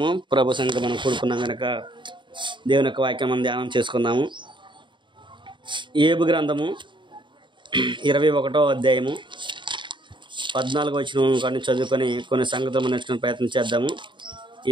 ప్రభు సంఘం మనం కూడుకున్నాం కనుక దేవుని యొక్క వాక్యం మనం ధ్యానం చేసుకుందాము. ఏబు గ్రంథము 21వ అధ్యాయము 14వ వచనం కానీ చదువుకొని కొన్ని సంగతులు మనం నేర్చుకునే ప్రయత్నం చేద్దాము.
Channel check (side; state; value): left; late; 0.23 ms